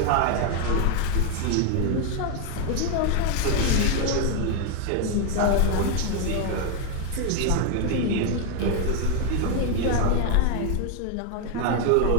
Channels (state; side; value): different; both; correlation 0.01